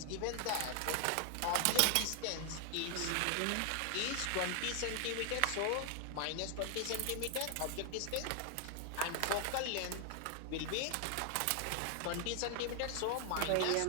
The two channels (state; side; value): different; both; correlation 0.00